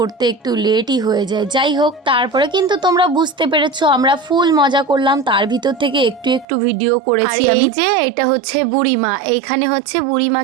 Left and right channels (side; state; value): left; drops out; at 6.5 s